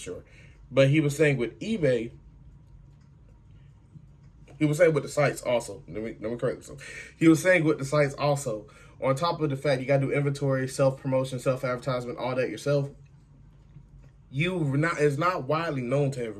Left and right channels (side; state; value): both; identical; correlation 1.00